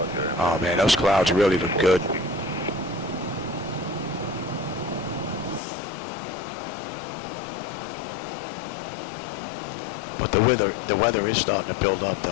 Oh man, those clouds really look good. But the weather is starting to build up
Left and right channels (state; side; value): drops out; right; at 5.6 s